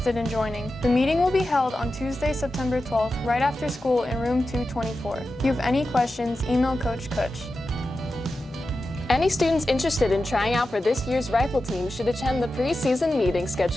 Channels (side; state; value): both; normal; correlation 0.92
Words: in joining. The meeting will be held on Tuesday, September 12th, right after school in room 224. If you have any questions, email Coach Kutch. Any students interested in trying out for this year's rifle team should attend the preseason meeting